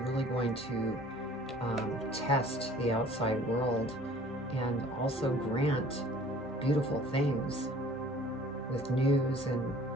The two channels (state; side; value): normal; both; correlation 0.50